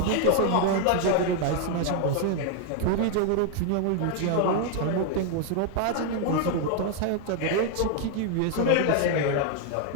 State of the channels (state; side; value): different; both; correlation 0.00